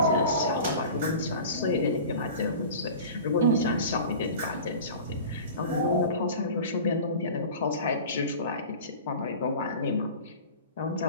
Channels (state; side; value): inverted; both; correlation -0.37